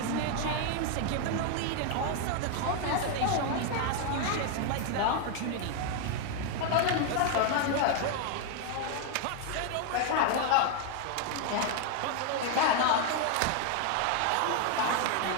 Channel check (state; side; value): different; both; correlation 0.01